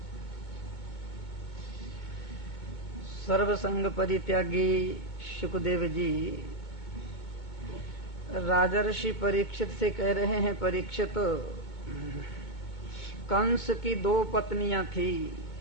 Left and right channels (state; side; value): late; right; 2.2 ms